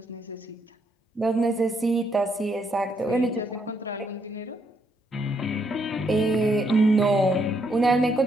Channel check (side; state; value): both; normal; correlation 0.74